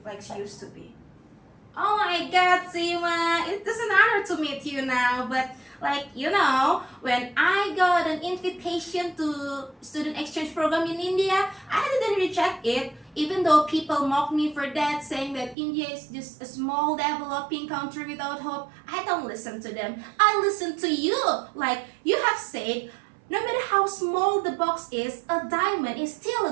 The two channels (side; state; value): left; drops out; at 15.6 s